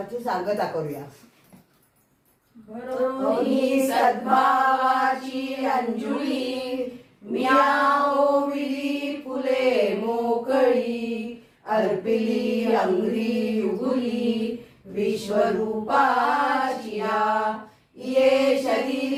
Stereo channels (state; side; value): identical; both; correlation 1.00